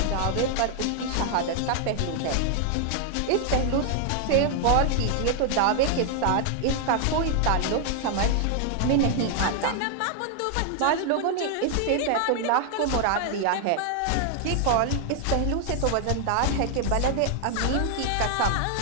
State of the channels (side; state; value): both; different; correlation 0.00